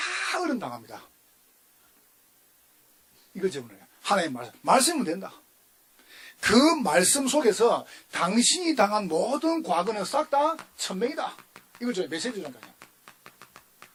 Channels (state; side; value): identical; both; correlation 1.00